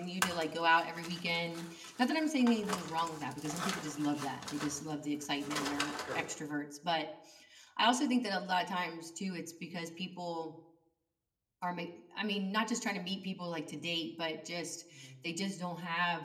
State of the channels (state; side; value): identical; both; correlation 1.00